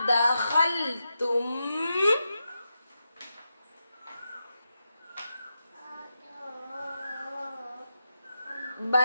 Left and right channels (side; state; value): both; inverted; correlation -0.88